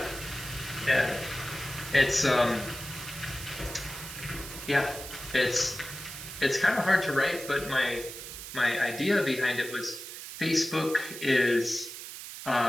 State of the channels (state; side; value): noise; right; hiss, 10 dB below the sound